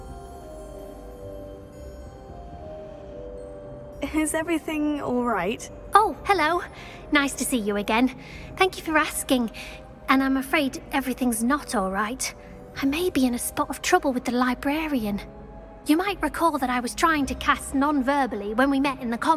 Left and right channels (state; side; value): identical; both; correlation 1.00